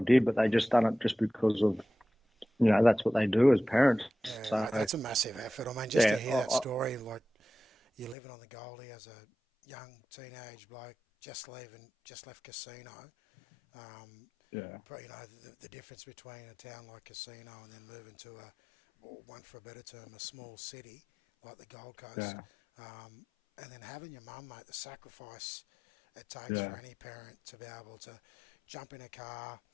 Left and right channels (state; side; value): drops out; right; at 8.2 s